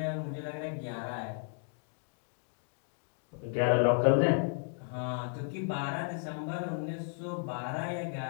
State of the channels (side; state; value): right; silent; 55 dB below the other